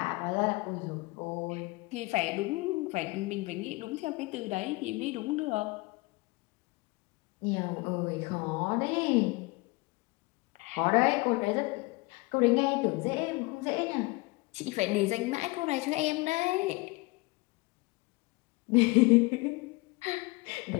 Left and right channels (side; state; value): right; quieter; 24.2 dB